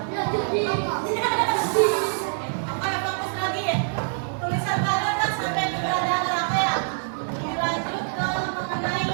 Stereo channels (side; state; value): left; silent; 62 dB below the other